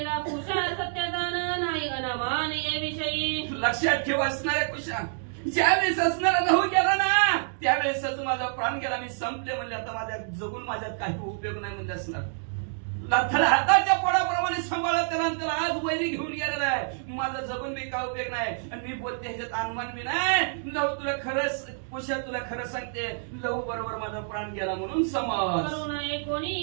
कुशा सत्यदान नाही अनामान ये विषयी. लक्षात ठेव असणाऱ्या कुशा, ज्यावेळेस असणारा लहू गेला ना त्यावेळेसच माझा प्राण गेला. मी संपले म्हणजे आता माझ्या जगून माझ्यात काही उपयोग नाही म्हणजे असणार. त्याला हाताच्या पोळाप्रमाणे सांभाळत त्याला आज वैरी घेऊन गेलेला आहे. माझा जगून बी काय उपयोग नाही. आणि मी बोलते ह्याच्यात अनुमान बी नाही. लव तुला खरंच कुशा तुला खरं सांगते, लव बरोबर माझा प्राण गेला म्हणून समज. करू नये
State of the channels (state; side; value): silent; left; digital silence